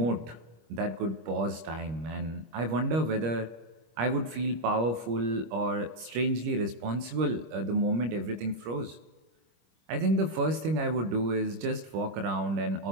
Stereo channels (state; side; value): late; left; 25 ms